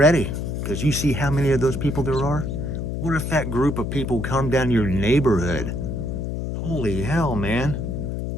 Because you see how many of those people there are? What if that group of people come down your neighborhood? Holy hell, man.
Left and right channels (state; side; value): noise; left; hum, 3 dB below the sound